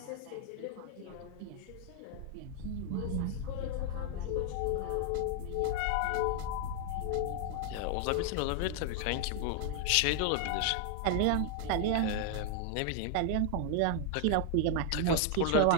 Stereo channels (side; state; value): both; different; correlation 0.00